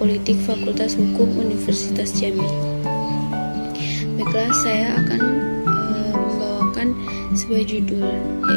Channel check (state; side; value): inverted; both; correlation -1.00